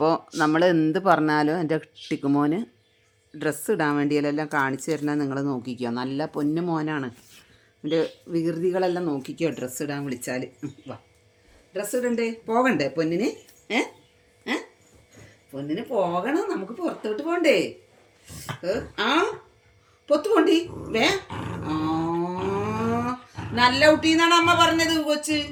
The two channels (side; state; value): both; identical; correlation 1.00